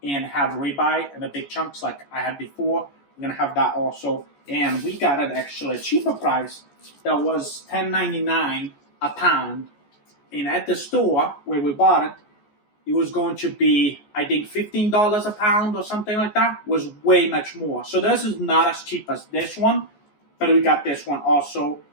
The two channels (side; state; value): right; late; 14 ms